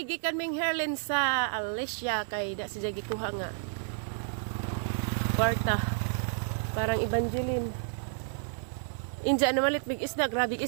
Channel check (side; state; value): left; silent; 57 dB below the other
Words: gikan ming Herlin sa Alicia kay da si Jagi kuha nga. Kwarta. Parang Evangeline. Inja na malit big isda, grabe